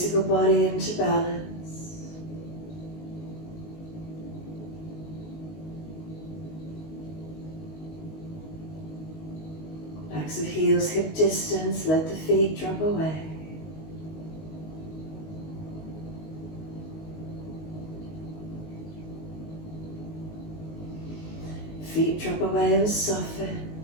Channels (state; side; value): late; right; 19 ms